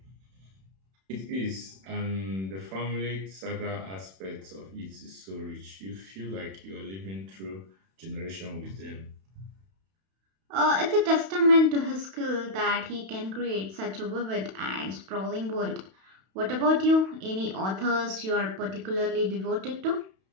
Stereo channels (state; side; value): late; left; 31 ms